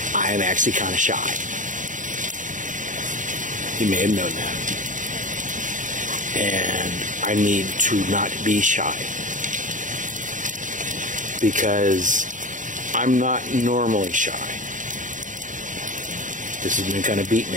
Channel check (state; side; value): late; left; 0.37 ms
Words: I am actually kind of shy. You may have known that. And I need to not be shy. Because I'm not normally shy. This has been kind of beaten